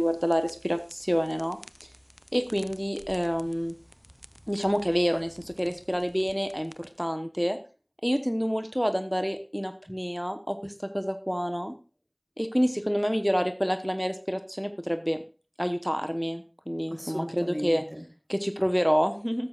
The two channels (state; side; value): identical; both; correlation 1.00